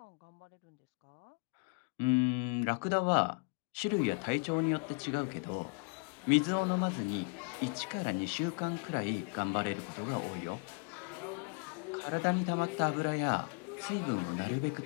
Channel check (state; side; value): quieter; right; 35.5 dB